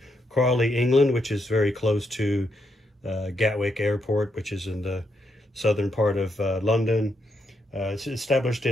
Crawley, England, which is very close to Gatwick Airport, which is in the southern part of London. It's established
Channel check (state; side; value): normal; both; correlation 0.79